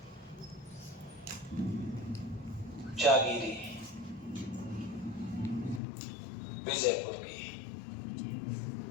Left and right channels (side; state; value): right; drops out; at 5.8 s